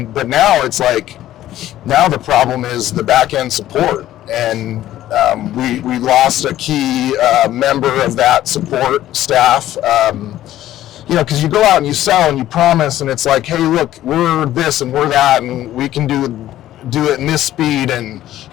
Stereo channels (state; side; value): quieter; right; 13.5 dB